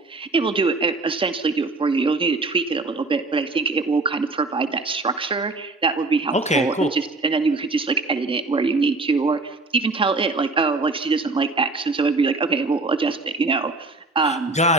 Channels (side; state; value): left; quieter; 3.3 dB